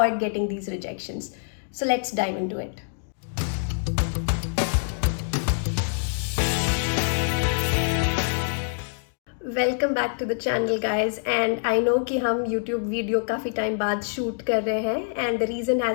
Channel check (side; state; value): right; silent; digital silence